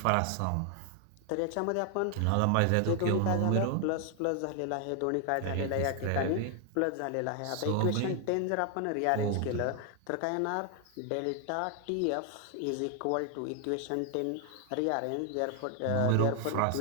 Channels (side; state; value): both; different; correlation 0.00